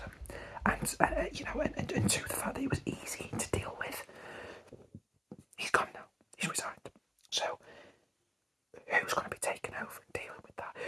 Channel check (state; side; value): identical; both; correlation 1.00